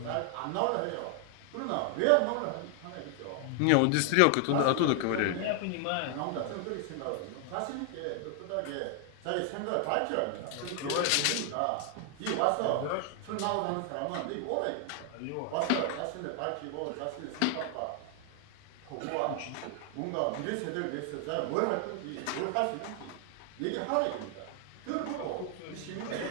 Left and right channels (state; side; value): different; both; correlation 0.00